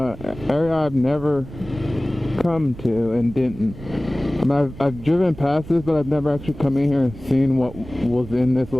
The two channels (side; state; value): right; noise; rumble, 15 dB below the sound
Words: area I've never come to and didn't. I mean, I've driven past this, but I've never actually come in here and seen what was in this